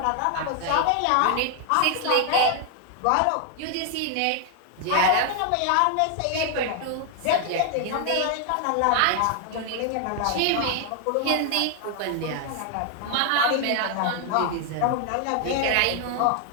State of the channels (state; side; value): different; both; correlation 0.00